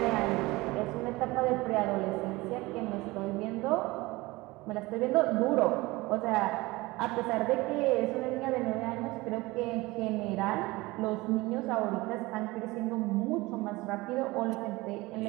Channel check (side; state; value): left; quieter; 21.4 dB